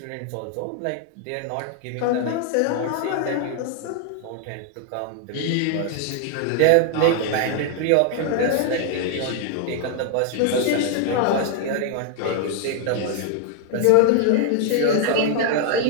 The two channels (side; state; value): both; different; correlation 0.00